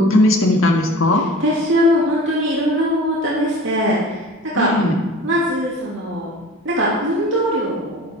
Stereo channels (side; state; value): both; normal; correlation 0.42